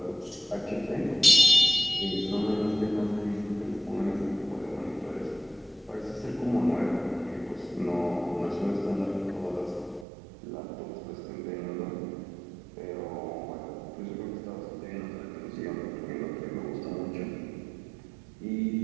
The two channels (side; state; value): left; drops out; at 10.1 s